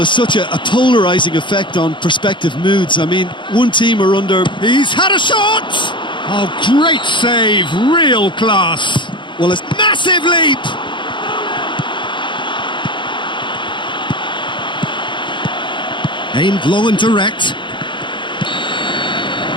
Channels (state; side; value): late; right; 0.23 ms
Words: such a polarising effect on prospective moods. I mean, one team are under... He's had a shot! Oh, great save, real class. Well, it's massive leap! Aimed long and direct.